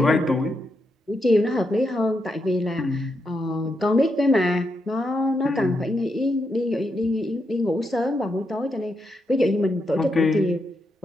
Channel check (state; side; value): normal; both; correlation 0.83